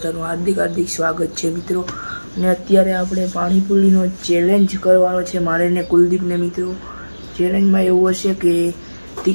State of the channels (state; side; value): inverted; both; correlation -1.00